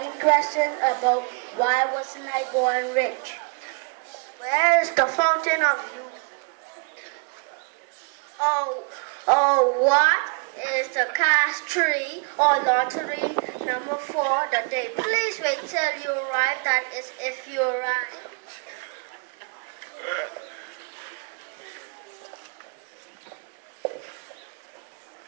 questions about why wasn't I born rich? Where is the fountain of youth? What is the cash tree or lottery number 4 the day? Please wait till you arrive. That is if you arrive.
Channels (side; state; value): left; quieter; 36.9 dB